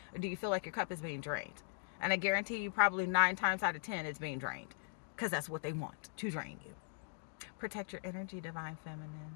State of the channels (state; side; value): silent; right; digital silence